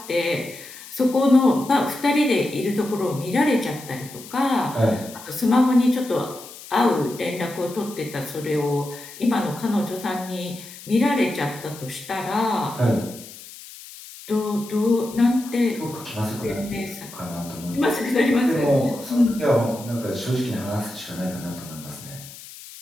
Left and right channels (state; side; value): noise; left; hiss, 16 dB below the sound